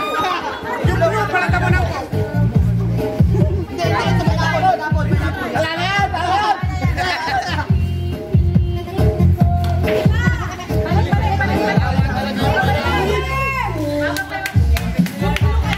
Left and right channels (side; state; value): both; identical; correlation 1.00